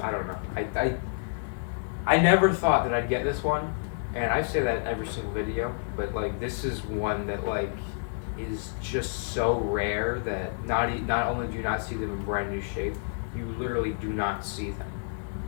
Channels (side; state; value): right; silent; digital silence